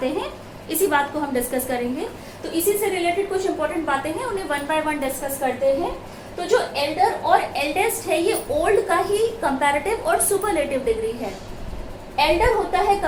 हैं, इसी बात को हम डिस्कस करेंगे। तो इसी से रिलेटेड कुछ इंपॉर्टेंट बातें हैं, उन्हें वन बाय वन डिस्कस करते हैं। तो जो एल्डर और एल्डेस्ट है ये ओल्ड का ही कंपैरेटिव और सुपरलेटिव डिग्री है। एल्डर होता है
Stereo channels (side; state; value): both; identical; correlation 1.00